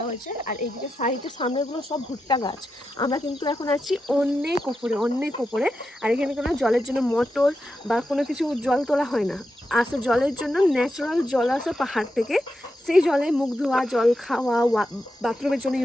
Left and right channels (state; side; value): normal; both; correlation 0.88